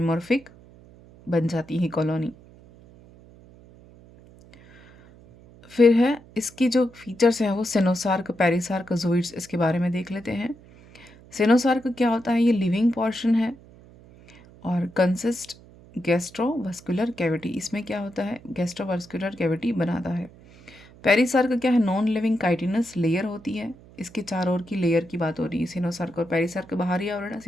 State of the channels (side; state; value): right; noise; hum, 23 dB below the sound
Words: बन जाती है कॉलोनी। फिर है इसकी जो फीचर्स हैं वो सेनोसार्क, पेरिसार्क, जूइड्स, इसके बारे में देख लेते हैं। सेनोसार्क क्या होता है? ये लिविंग पोर्शन है और कंसिस्ट गैस्ट्रोवास्कुलर कैविटी, इसमें क्या होता है? गैस्ट्रोवास्कुलर कैविटी बनाता है। पेरिसार्क क्या है? नॉन लिविंग काइटिनस लेयर होती है, इसके चारों ओर की लेयर की बात हो रही है। सिनोसार्क और पेरिसार्क बाहरी आवरण है,